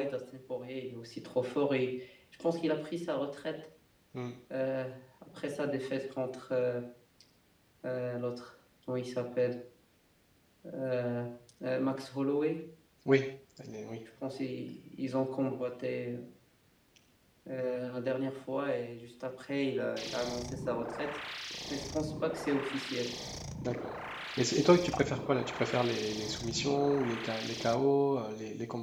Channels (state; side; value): identical; both; correlation 1.00